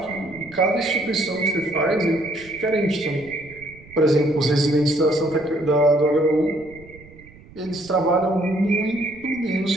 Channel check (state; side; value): noise; right; rumble, 22 dB below the sound